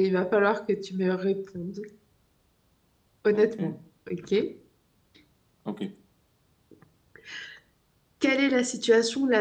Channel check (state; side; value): identical; both; correlation 1.00